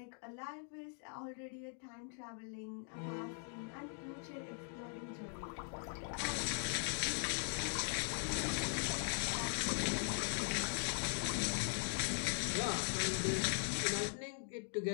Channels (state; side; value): silent; right; 50 dB below the other